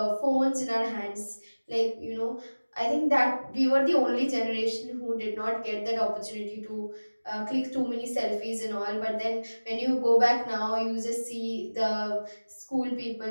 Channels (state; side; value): inverted; both; correlation -1.00